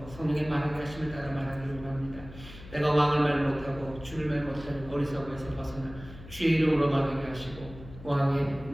성령의 말하게 하심을 따라 말하기를 원합니다. 내가 왕을 말 못하고 주를 말 못하는 어리석음에서 벗어나 주의 이름으로 말하게 하시고 왕의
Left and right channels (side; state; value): left; noise; hum, 16 dB below the sound